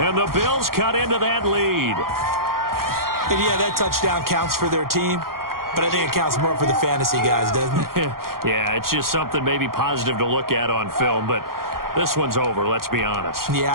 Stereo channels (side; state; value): left; late; 0.92 ms